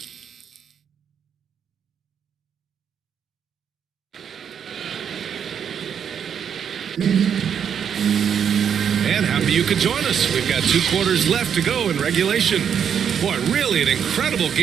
And happy you could join us. We've got 2 quarters left to go in regulation. Boy, really an incredible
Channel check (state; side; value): quieter; left; 7.9 dB